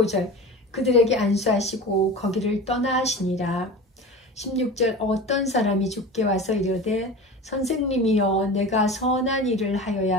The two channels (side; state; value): both; normal; correlation 0.32